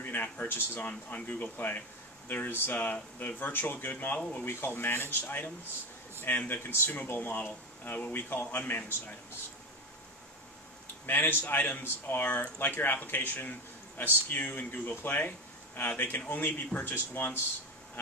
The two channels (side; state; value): both; normal; correlation 0.19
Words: in-app purchases on Google Play. There's the virtual good model, what we call managed items, and the consumable model, what we call unmanaged items. Managed items are, like your application, a SKU in Google Play. They can only be purchased once.